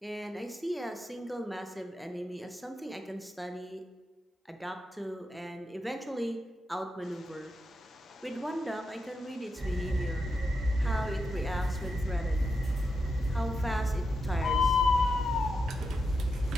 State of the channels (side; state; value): both; normal; correlation 0.86